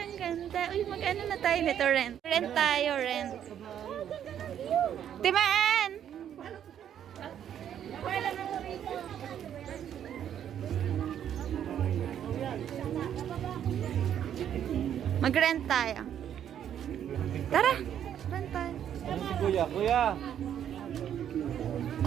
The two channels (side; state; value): left; quieter; 9.7 dB